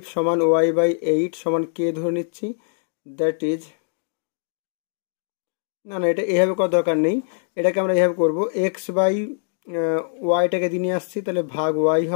সমান y/8 সমান কে ধরে নিচ্ছি। দ্যাট ইজ, না এটা এভাবে করার দরকার নেই, এটাকে আমরা এভাবে করবো, x/yটাকে দিয়ে নিয়ে আসছি, তাহলে ভাগ y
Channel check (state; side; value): silent; right; digital silence